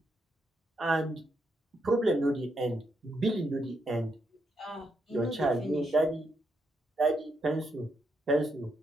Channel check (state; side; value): normal; both; correlation 0.79